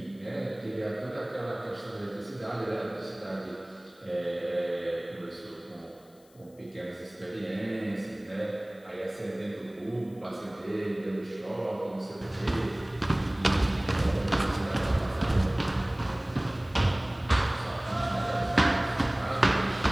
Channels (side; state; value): left; noise; hiss, 30 dB below the sound